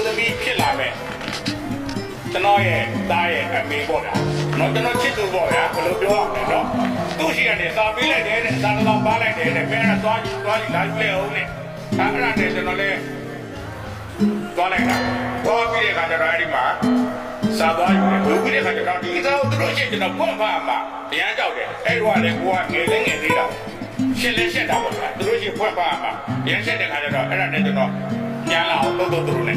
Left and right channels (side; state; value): both; identical; correlation 1.00